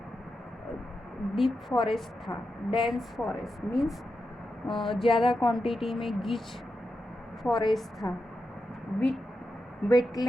डीप फॉरेस्ट था. डेंस फॉरेस्ट मीन्स ज़्यादा क्वांटिटी में गीच फॉरेस्ट था.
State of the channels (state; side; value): normal; both; correlation 0.88